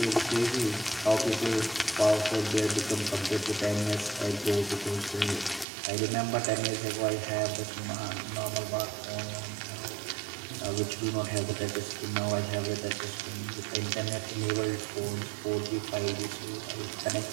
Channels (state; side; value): drops out; left; at 5.7 s